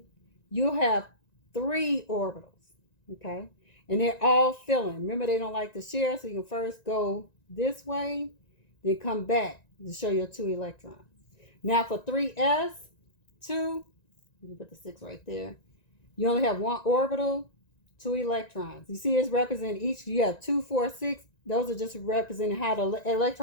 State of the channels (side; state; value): right; late; 1.9 ms